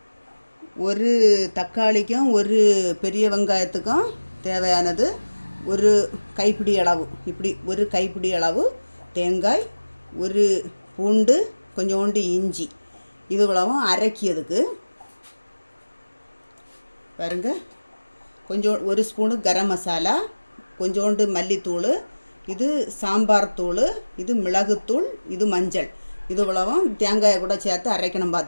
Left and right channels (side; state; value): both; inverted; correlation -1.00